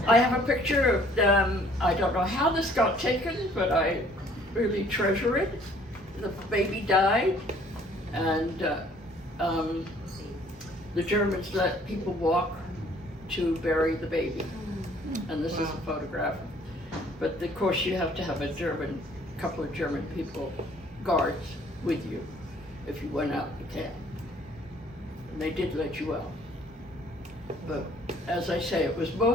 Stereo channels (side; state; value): both; normal; correlation 0.58